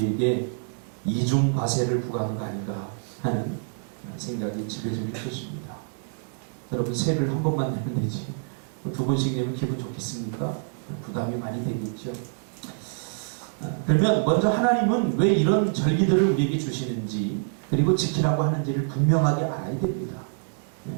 이중 과세를 부과하는 거 아닌가 하는 생각이 지배적일 것입니다. 여러분 세를 한 번만 내면 되지 두 번씩 내면 기분 좋겠습니까? 부담이 많이 되겠죠. 그러면 먼저 하나님은 왜 이런 절기들을 우리에게 주시는지 그리고 지키라고 하는지를 분명하게 알아야 됩니다.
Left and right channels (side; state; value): left; silent; digital silence